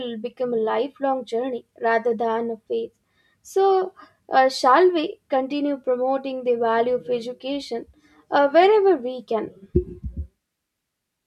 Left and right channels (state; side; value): identical; both; correlation 1.00